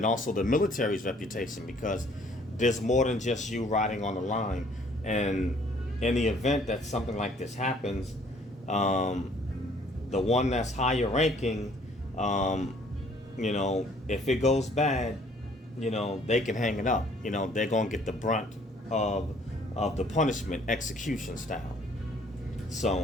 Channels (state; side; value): normal; both; correlation 0.59